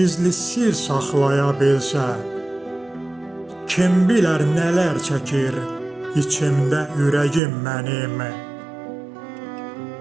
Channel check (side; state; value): left; drops out; at 7.4 s